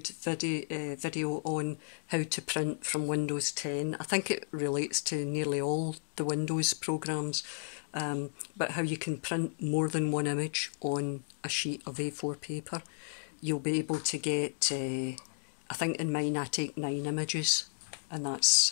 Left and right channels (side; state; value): right; silent; digital silence